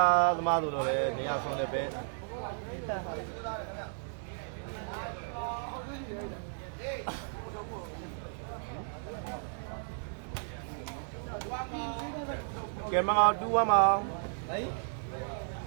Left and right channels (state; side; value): silent; left; digital silence